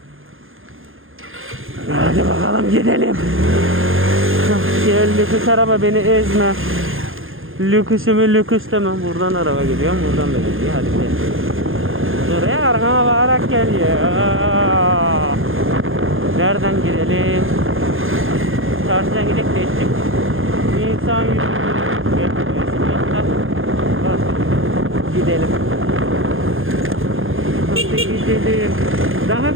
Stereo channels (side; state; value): left; late; 0.60 ms